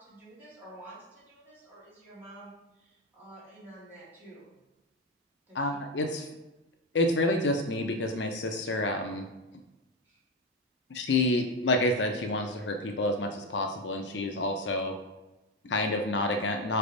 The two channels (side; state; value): both; normal; correlation 0.12